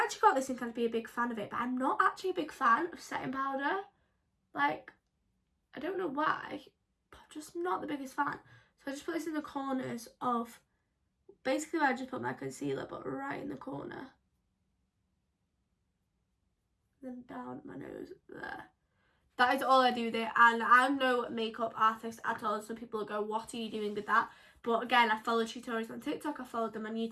actually got this and kind of be a big fan of it, but I'm not actually a big fan of setting powder. Like, I don't know why, but I'm just not the biggest fan. So I just put this in the corners of, basically where I just put my concealer, but right in the corner. Then down my nose there. That is all I do with it, and I'm no makeup artist at all. Some people go, what are you doing with that? But again, I follow tutorials on TikTok, I followed them on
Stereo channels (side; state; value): both; identical; correlation 1.00